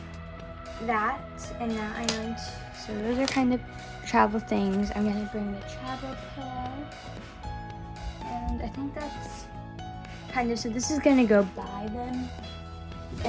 that, and now I'm going to, so those are kind of travel things. I'm going to bring the travel pillow, and I think that's kind of, so this is going to go by them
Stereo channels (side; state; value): both; identical; correlation 1.00